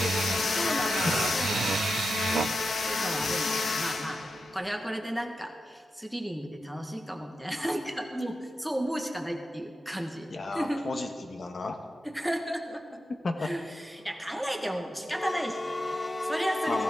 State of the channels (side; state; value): both; normal; correlation 0.89